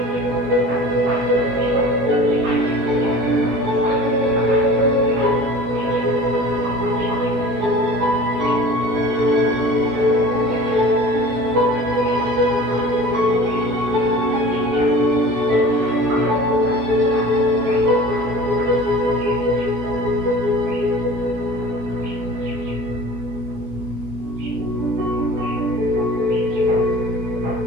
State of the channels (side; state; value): left; late; 16 ms